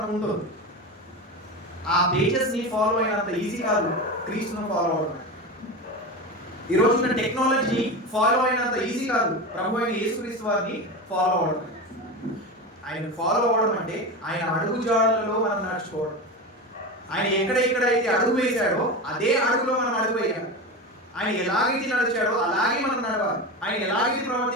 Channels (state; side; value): normal; both; correlation 0.23